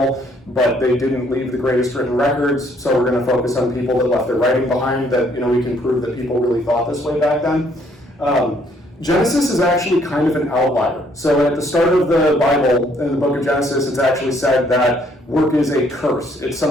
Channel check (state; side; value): normal; both; correlation 0.66